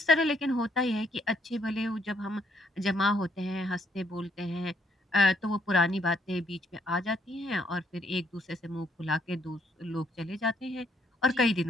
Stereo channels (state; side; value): normal; both; correlation 0.70